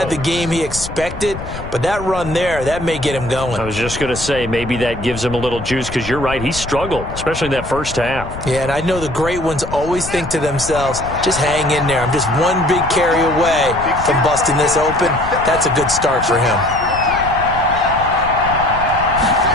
the game he expected, but that run there, that may get him going. I was just going to say, maybe that gives him a little juice, because you're right, he struggled, especially in that first half. Yeah, and I know the great ones always think to themselves, just hang in there. I'm just one big carry away from busting this open. That's a good start for him.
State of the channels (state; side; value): noise; left; rumble, 10 dB below the sound